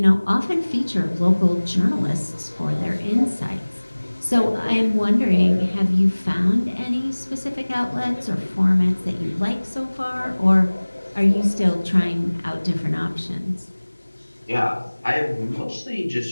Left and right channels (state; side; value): inverted; both; correlation -1.00